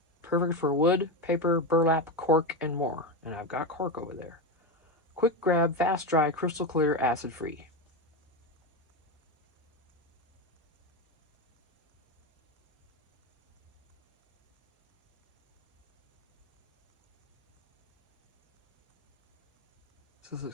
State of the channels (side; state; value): both; normal; correlation 0.15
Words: Perfect for wood, paper, burlap, cork, and more. And I've got cork over there. Quick grab, fast dry, crystal clear, acid free. So this is,